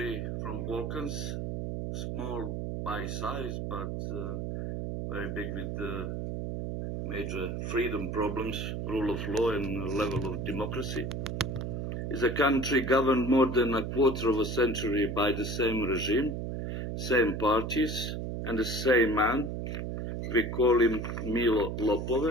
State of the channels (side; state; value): right; noise; hum, 3 dB below the sound